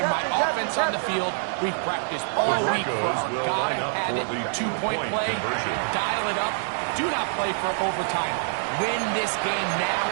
my offense on the field. We've practiced all week for gotta have it, two-point play, dial it up. Do not play for overtime. Win this game now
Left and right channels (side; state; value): left; silent; digital silence